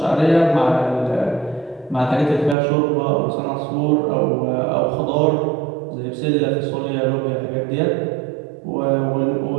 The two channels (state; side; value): drops out; left; at 2.6 s